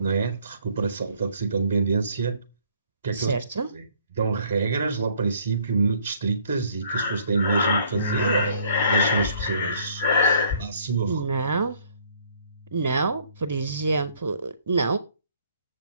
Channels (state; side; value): inverted; both; correlation -0.61